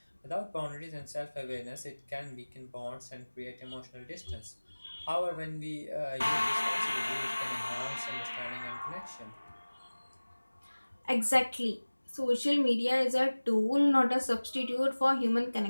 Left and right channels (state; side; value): inverted; both; correlation -1.00